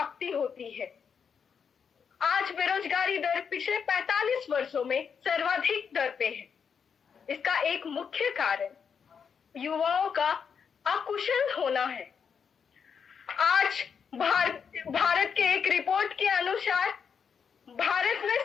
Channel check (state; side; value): quieter; right; 6.7 dB